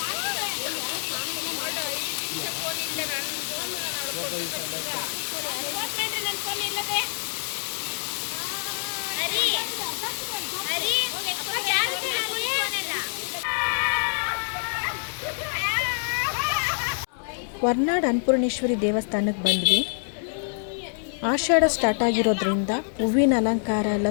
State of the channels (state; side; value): silent; right; 61 dB below the other